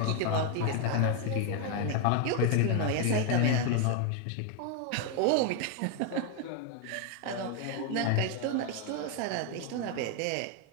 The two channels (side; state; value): both; different; correlation 0.01